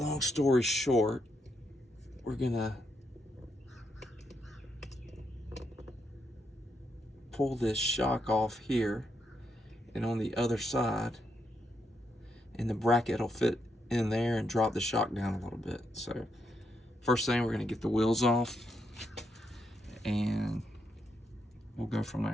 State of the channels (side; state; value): both; normal; correlation 0.80